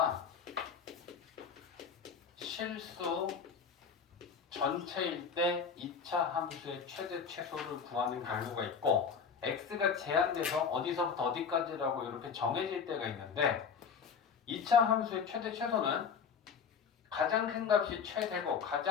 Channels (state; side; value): quieter; right; 6.3 dB